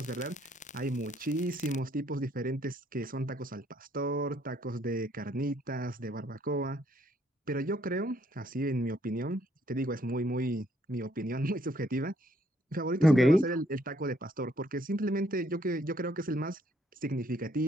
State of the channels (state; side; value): normal; both; correlation 0.68